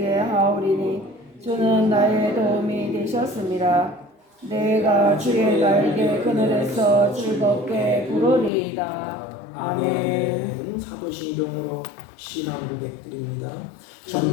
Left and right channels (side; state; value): right; drops out; at 8.5 s